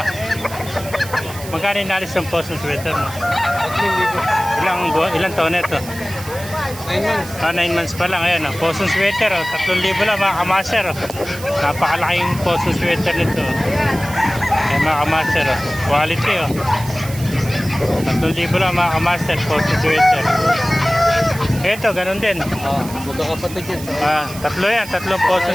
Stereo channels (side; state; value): right; noise; hiss, 14 dB below the sound